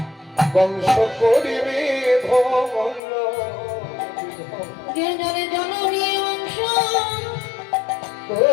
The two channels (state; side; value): drops out; right; at 3.0 s